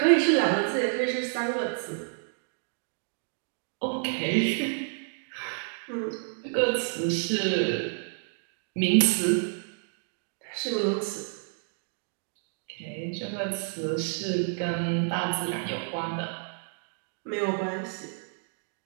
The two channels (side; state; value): left; silent; 58 dB below the other